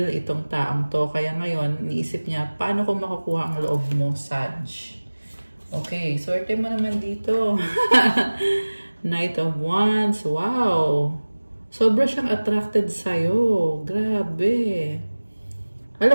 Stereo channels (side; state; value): both; inverted; correlation -1.00